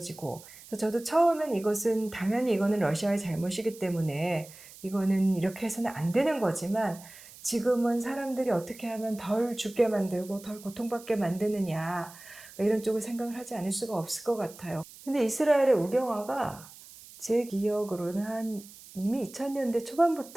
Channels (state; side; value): noise; right; hiss, 19 dB below the sound